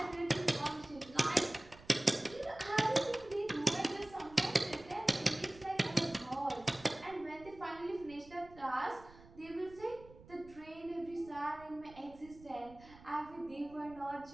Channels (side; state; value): right; noise; rumble, 21 dB below the sound